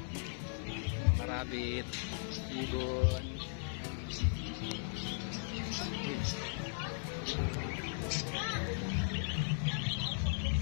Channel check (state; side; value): silent; right; 53 dB below the other